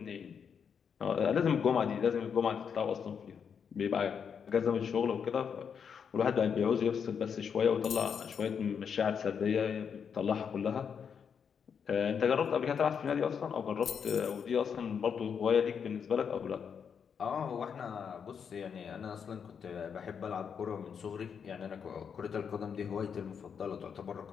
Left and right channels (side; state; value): right; quieter; 7.0 dB